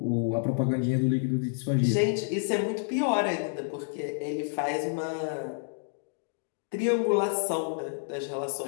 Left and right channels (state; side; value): silent; right; digital silence